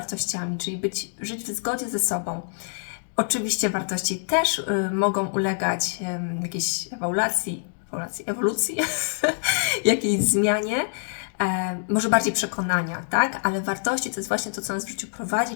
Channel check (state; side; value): silent; right; digital silence